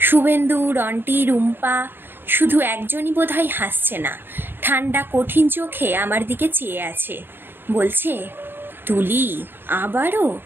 রন্টি, রুম্পা, শুধু একজনই বোধহয় হাসছে না, ঠান্ডা কঠিন চোখে আমার দিকে চেয়ে আছে। বলছে, তুলি আবারও?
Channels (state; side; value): late; left; 0.099 ms